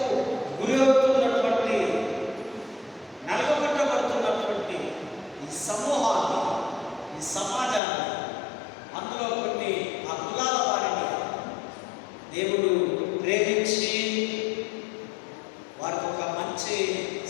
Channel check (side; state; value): right; drops out; at 7.8 s